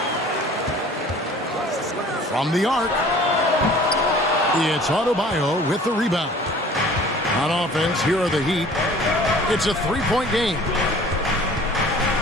From the arc, it's Adebayo with the rebound. On offense, here are the Heat. It's a 3-point game.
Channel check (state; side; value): normal; both; correlation 0.48